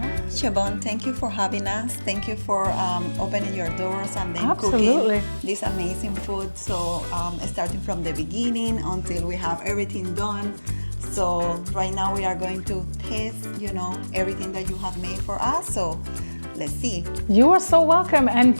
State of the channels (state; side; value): inverted; both; correlation -1.00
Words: Shyvon, thank you for having us. Thank you for opening your doors and then Absolutely. cooking this amazing food. So starting from the beginning until we have everything done. So right now we are going to taste, everything that you have made for us. So let's see. You are so welcome, and